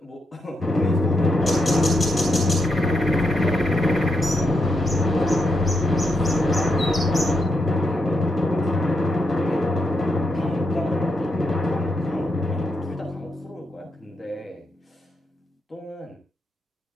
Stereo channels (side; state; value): both; normal; correlation 0.82